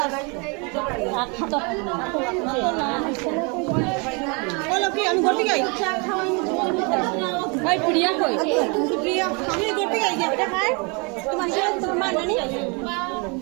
বলো কি আমি ঘর থেকে আই ভাই প্রিয়া কই প্রিয়া আমি ঘর থেকে আই এটা খাই তোমার মা নানি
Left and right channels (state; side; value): quieter; left; 32.1 dB